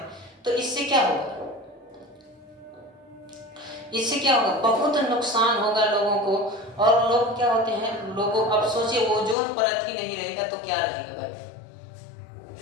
तो इससे क्या होगा? इससे क्या होगा? बहुत नुकसान होगा लोगों को। और लोग क्या होते हैं, लोगों, अब सोचिए ओजोन परत ही नहीं रहेगा तो क्या रहेगा भाई?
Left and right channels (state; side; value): drops out; right; at 9.3 s